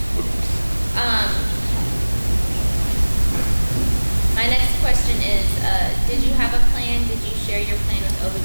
My next question is, did you have a plan? Did you share your plan with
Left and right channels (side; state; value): both; inverted; correlation -1.00